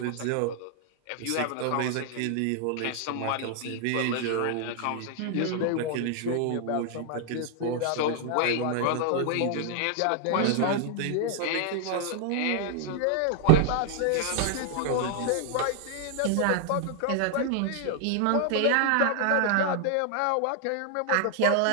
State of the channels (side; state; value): both; different; correlation 0.00